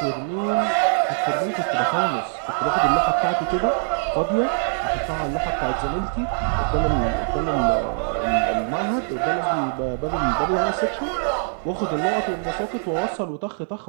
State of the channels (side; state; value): left; silent; 58 dB below the other